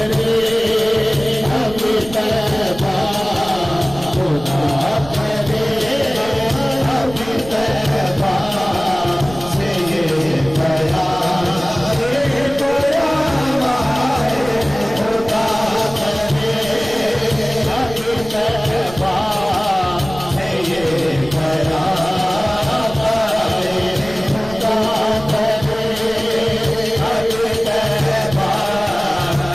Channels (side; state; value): right; noise; rumble, 15 dB below the sound